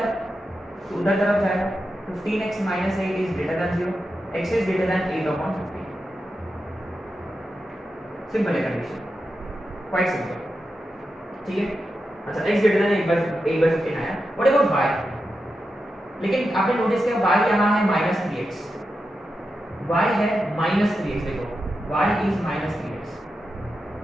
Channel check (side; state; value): both; normal; correlation 0.89